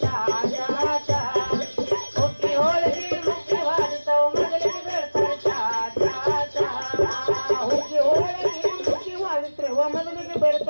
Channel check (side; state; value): both; inverted; correlation -1.00